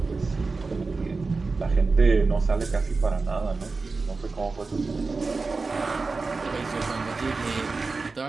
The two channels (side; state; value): left; quieter; 4.0 dB